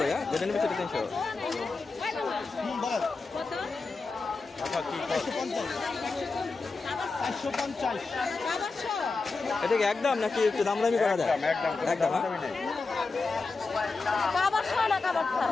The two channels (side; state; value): right; quieter; 4.0 dB